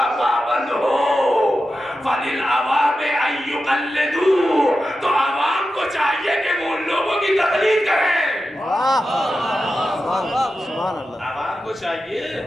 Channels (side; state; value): both; normal; correlation 0.91